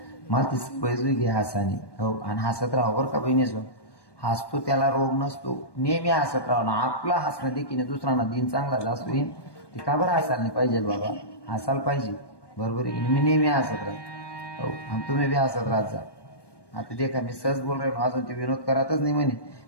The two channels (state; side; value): late; right; 1.2 ms